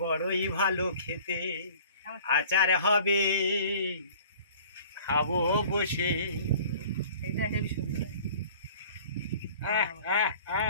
ভালো খেতে, আচার হবে খাবো বসে। এটা হেবি সুন্দর।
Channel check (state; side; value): inverted; both; correlation -0.48